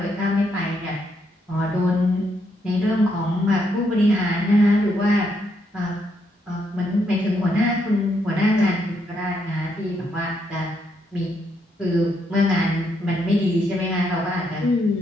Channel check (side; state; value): both; normal; correlation 0.76